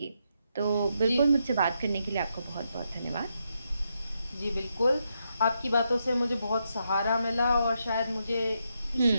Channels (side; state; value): both; inverted; correlation -0.81